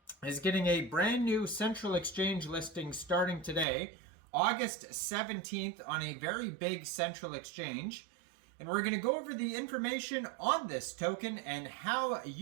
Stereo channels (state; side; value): drops out; left; at 3.7 s